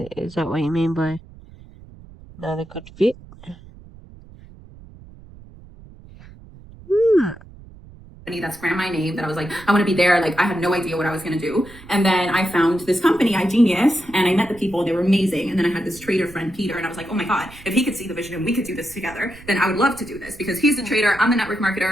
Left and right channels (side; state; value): right; noise; rumble, 20 dB below the sound